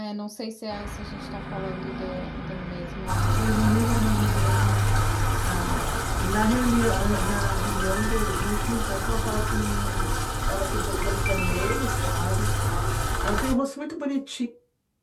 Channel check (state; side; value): identical; both; correlation 1.00